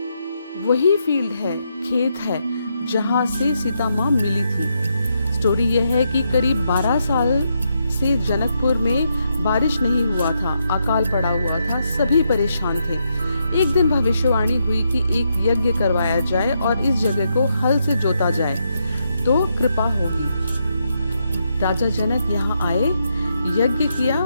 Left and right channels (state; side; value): inverted; both; correlation -0.80